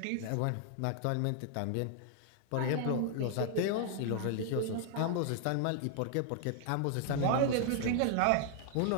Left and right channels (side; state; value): both; different; correlation 0.00